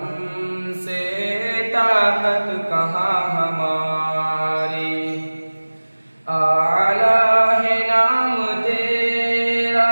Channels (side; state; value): both; inverted; correlation -1.00